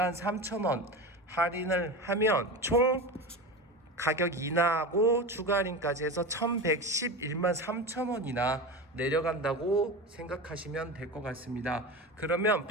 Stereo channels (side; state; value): both; normal; correlation 0.26